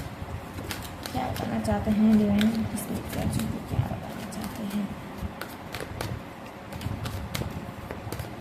क्या बताना चाहते हैं। डिवाइन, उनके स्पिरिट गाइड्स उनको क्या बताना चाहते हैं।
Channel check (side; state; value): both; identical; correlation 1.00